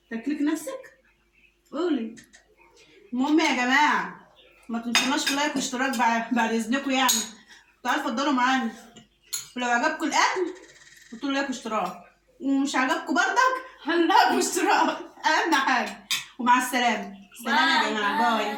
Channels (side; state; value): both; identical; correlation 1.00